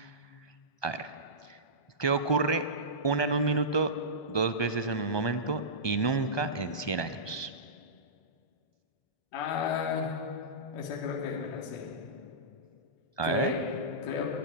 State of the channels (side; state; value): right; late; 1.2 ms